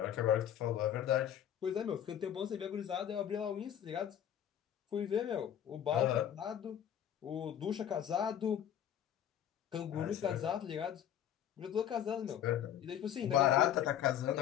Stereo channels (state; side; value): quieter; right; 10.1 dB